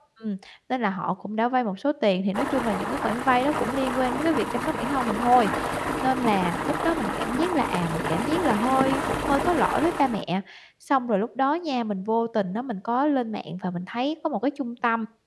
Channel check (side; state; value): both; identical; correlation 1.00